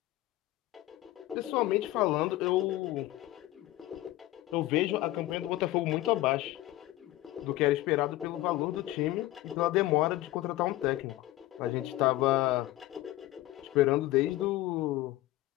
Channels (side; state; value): right; quieter; 16.7 dB